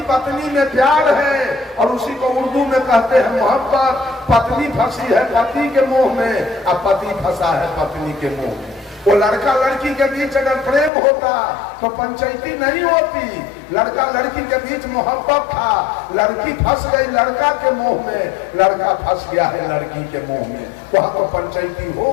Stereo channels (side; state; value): right; drops out; at 10.9 s